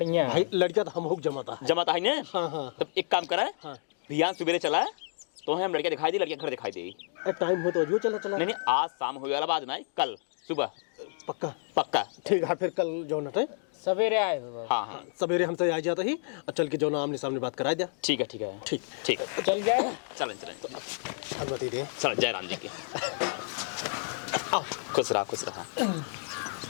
भाई लड़का तो हम हुक जमाता है। जमाता है ना। हाँ हाँ तब एक काम करा हाँ। भैया सवेरे चला तो हम लड़कियाँ दिखाई दी लड़कियाँ घर दिखाई देगी। टाइम हो तो अजू चला चला। नहीं आज शाम हो वाला बात ना कल सुबह पक्का पक्का। ठीक है फिर कल जो नटे सवेरे आए हो बाबू। हाँ हाँ सवेरे हमसे आ जाता ही और चल के जो ना आमने सामने बात करा दिया। ठीक है ठीक है ठीक ठीक है चल जाए। चलें अनुमति दे। चल जय राम जी की। खुश रहा।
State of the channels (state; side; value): silent; right; digital silence